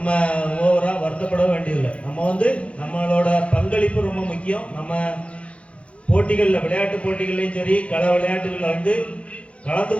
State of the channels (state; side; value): late; right; 0.062 ms